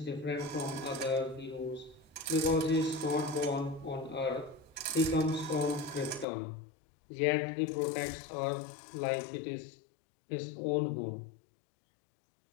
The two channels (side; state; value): right; drops out; at 6.2 s